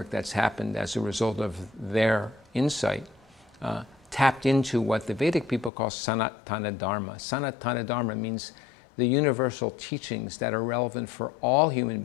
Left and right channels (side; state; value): right; drops out; at 5.7 s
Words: that's happened as a result of their insight tapped into what the Vedic people call Sanatana Dharma. Sanatana Dharma means the universal teachings that are relevant for all human